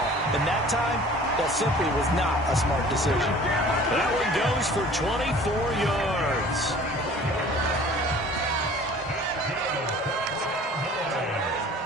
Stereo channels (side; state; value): both; normal; correlation 0.48